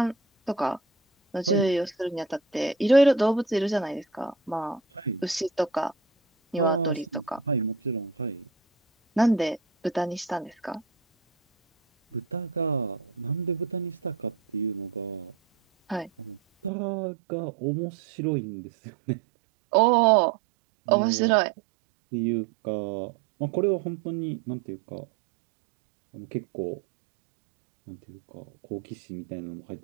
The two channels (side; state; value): left; drops out; at 16.7 s